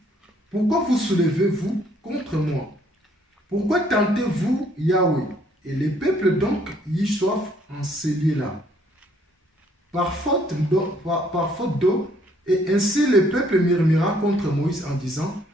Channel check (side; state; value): both; normal; correlation 0.64